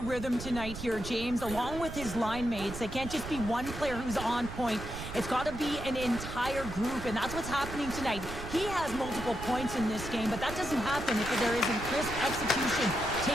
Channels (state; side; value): noise; right; rumble, 10 dB below the sound